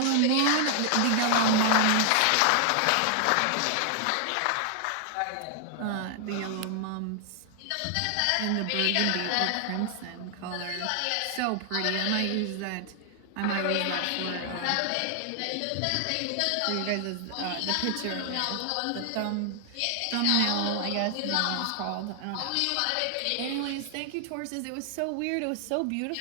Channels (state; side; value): different; both; correlation 0.00